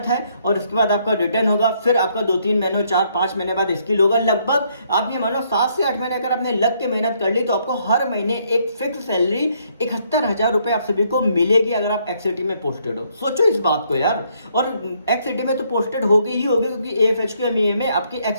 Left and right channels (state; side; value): inverted; both; correlation -0.70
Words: है और उसके बाद आपका रिटर्न होगा, फिर आपका 2-3 महीनों 4-5 महीने बाद स्किल होगा। लगभग आप ये मानो 7 से 8 महीने अगर आपने लग के मेहनत कर ली तो आपको हर महीने एक फिक्स सैलरी 71,000 रुपये आप सभी को मिलेगी अगर आप एक्ससिटी में पोस्टेड हो। सोचो इस बात को यार। और एक्ससिटी में तो पोस्टेड होगी ही होगी, क्योंकि AFHQ MEA में आपकी